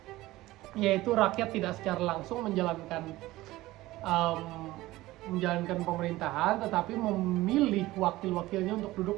yaitu rakyat tidak secara langsung menjalankan pemerintahan, tetapi memilih wakil-wakilnya untuk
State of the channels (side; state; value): left; quieter; 17.7 dB